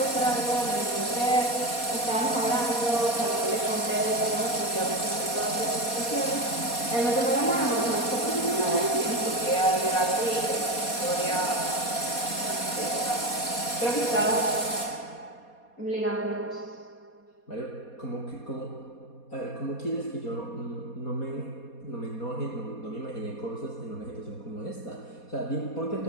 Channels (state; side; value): late; right; 4.2 ms